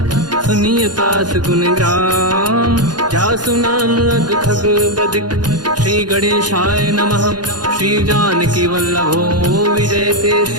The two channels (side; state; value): left; late; 0.70 ms